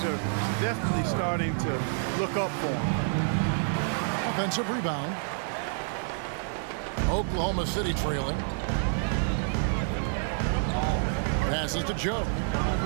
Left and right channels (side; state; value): left; silent; digital silence